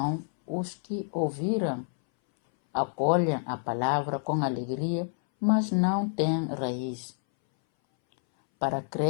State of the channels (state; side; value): silent; right; 59 dB below the other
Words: os que ouviram, acolhem a palavra com alegria, mas não têm raiz. Para